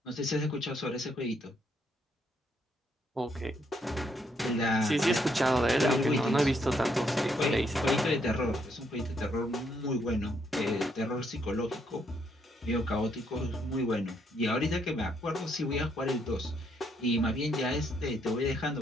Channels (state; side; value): normal; both; correlation 0.74